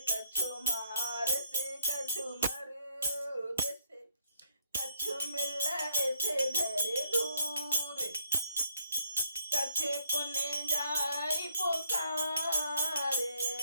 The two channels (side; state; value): both; inverted; correlation -0.67